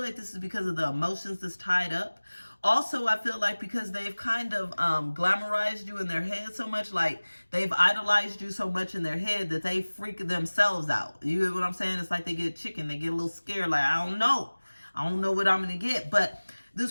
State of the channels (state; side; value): inverted; both; correlation -1.00